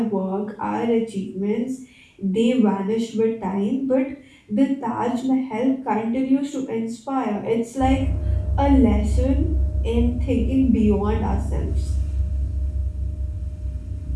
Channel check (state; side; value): identical; both; correlation 1.00